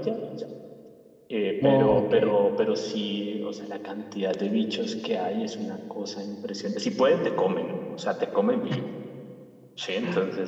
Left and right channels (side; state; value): both; identical; correlation 1.00